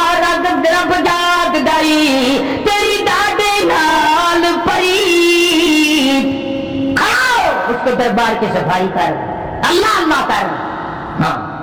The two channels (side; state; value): both; identical; correlation 1.00